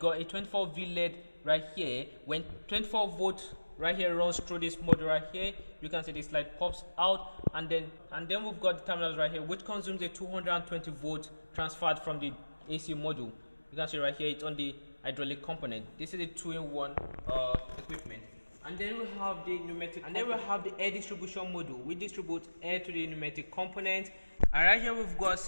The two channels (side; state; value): both; inverted; correlation -1.00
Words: a 24V LED right here. When 24 volt right here runs through this module right here, you can see this light pops out, and then we've got the terminals right here, which consumes a 220 volt transferred from the AC module. You can see right here it's on the hydraulic component. This is a 2-in-1 equipment. And then we have the pneumatic, and then we have the air distribution module, which distributes air to the pneumatic component. And right here we've got a